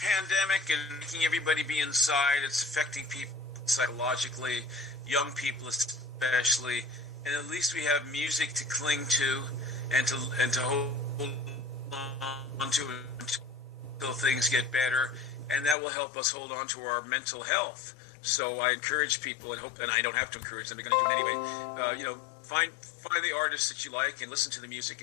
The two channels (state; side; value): drops out; right; at 15.8 s